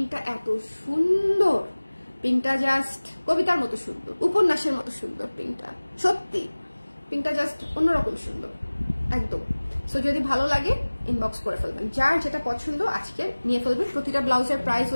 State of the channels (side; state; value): both; inverted; correlation -1.00